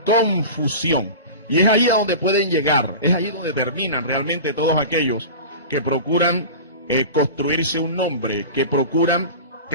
confusión. Y es ahí a donde pueden llegar, es ahí donde terminan realmente todos aquellos que procuran construirse un nombre, que procuran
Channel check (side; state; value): both; inverted; correlation -0.32